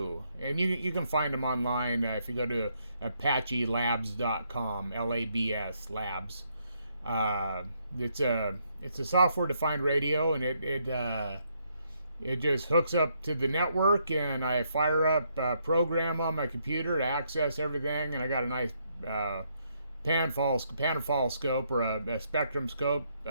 And you can find them online if you go to apachelabs.com, Labs, labs. It's a software-defined radio, and it just hooks up to the network, and I fire up a program on my computer to access everything, and I got a nice panfall scope or a spectrum scope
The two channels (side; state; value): both; inverted; correlation -0.74